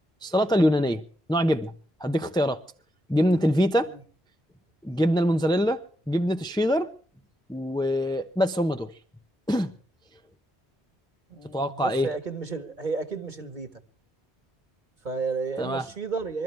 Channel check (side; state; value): both; normal; correlation 0.82